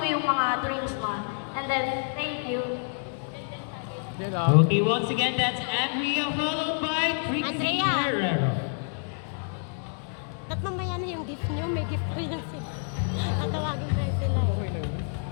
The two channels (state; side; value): silent; right; 59 dB below the other